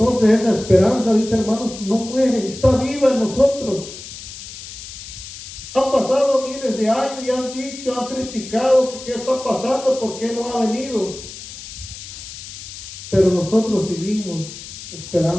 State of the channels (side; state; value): left; noise; hiss, 13 dB below the sound